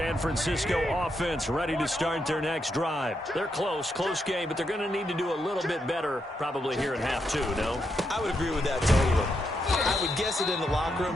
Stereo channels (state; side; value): normal; both; correlation 0.81